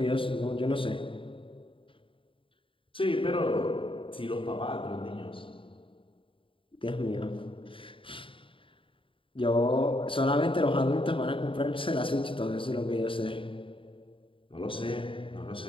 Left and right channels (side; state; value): right; late; 0.25 ms